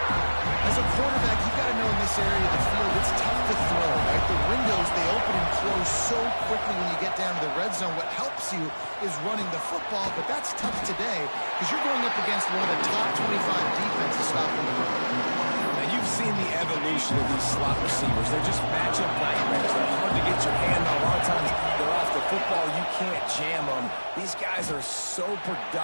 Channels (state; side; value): inverted; both; correlation -1.00